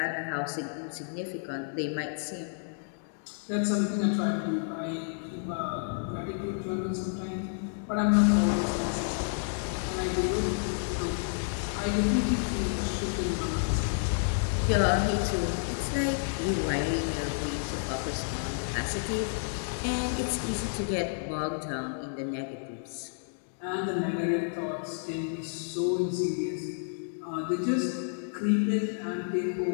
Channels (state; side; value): silent; right; digital silence